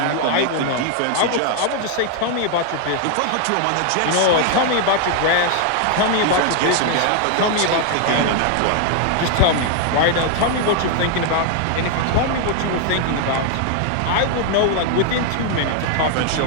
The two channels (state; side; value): different; both; correlation 0.00